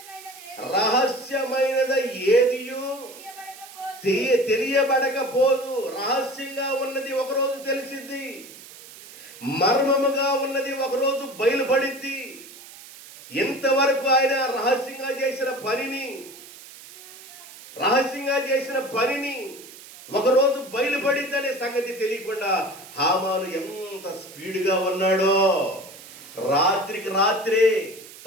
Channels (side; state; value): right; noise; hiss, 18 dB below the sound